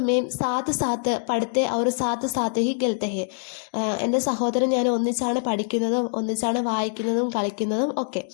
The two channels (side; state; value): right; silent; digital silence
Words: മേം സാത്ത് സാത്ത് പഠിത്തെ ഔർ സാത്ത് സാത്ത് ഹി ഗൽത്തെ ഹെ. എൻ്റെ സഹോദരൻ ഞാൻ ഒന്നിച്ചാണ് പഠിക്കുന്നതും ഒന്നിച്ചാണ് വായിക്കുന്നതും കളിക്കുന്നതും ഒക്കെ.